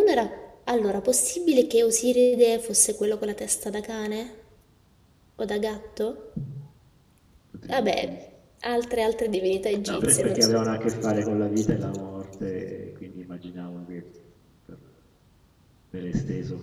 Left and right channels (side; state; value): both; identical; correlation 1.00